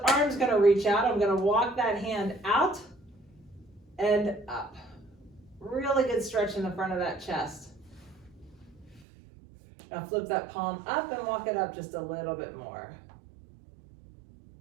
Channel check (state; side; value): drops out; left; at 9.1 s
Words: arm is going to reach out. I'm going to walk that hand out and up. Really good stretch in the front of that chest. Now flip that palm up and walk it up just a little bit more.